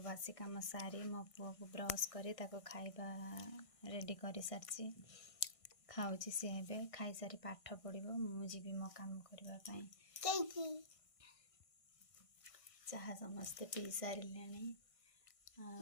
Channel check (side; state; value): right; late; 1.6 ms